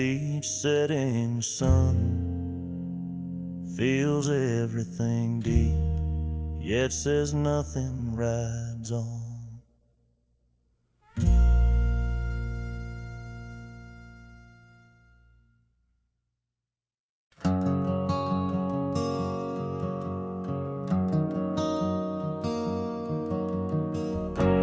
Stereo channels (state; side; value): identical; both; correlation 1.00